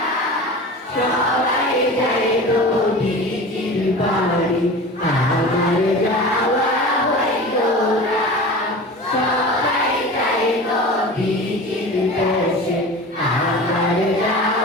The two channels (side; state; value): both; normal; correlation 0.34